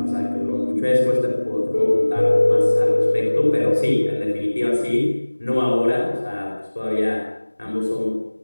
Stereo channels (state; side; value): inverted; both; correlation -1.00